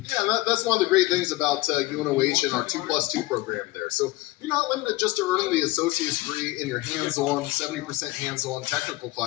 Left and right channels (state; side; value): quieter; right; 19.5 dB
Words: Yeah, that's one of the great things about UNOH and our 2+2 program there. So you're not limited just to earning the associate's degree in your hands-on, 70% hands-on technical